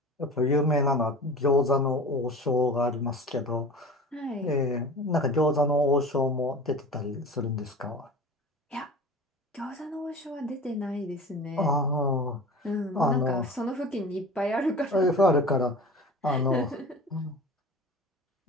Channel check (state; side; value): normal; both; correlation 0.37